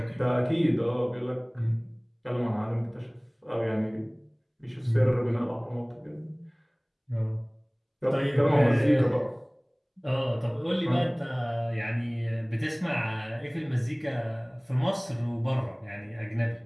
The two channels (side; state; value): both; identical; correlation 1.00